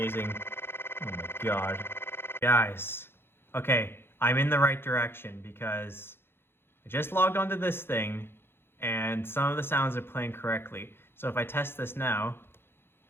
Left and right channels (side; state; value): right; late; 0.11 ms